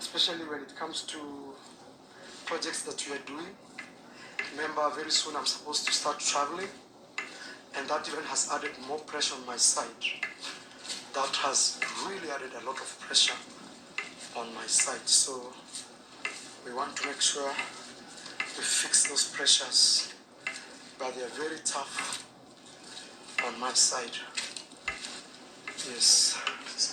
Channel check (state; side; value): identical; both; correlation 1.00